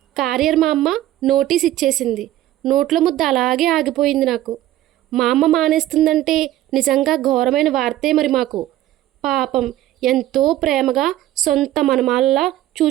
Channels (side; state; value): left; quieter; 14.1 dB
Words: కార్యర్ మా అమ్మ నోటీస్ ఇచ్చేసింది. నోట్ల ముద్ద అలాగే ఆగిపోయింది నాకు. మా అమ్మ మానేస్తుందంటే నిజంగా ఘోరమైన వార్తే మరి మాకు. పాపం ఎంతో ప్రేమగా సొంత మనమాల్లా